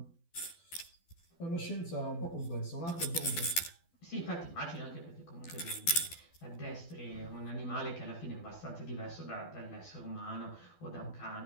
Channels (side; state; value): right; late; 12 ms